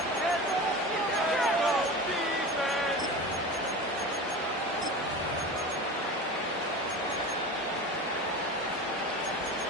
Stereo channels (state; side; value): normal; both; correlation 0.31